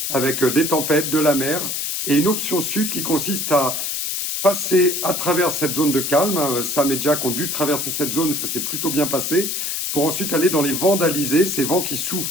avec des tempêtes, de la mer, et une option sud qui consiste à passer à travers cette zone de calme. Sam et Jack ont dû traverser cette zone, ça s'est plutôt bien passé, pour ensuite aller dans les vents d'Alizé, ces vents qui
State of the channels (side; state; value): left; noise; hiss, 2 dB below the sound